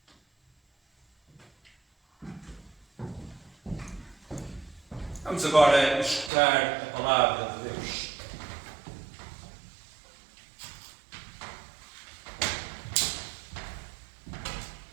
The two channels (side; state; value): left; drops out; at 6.3 s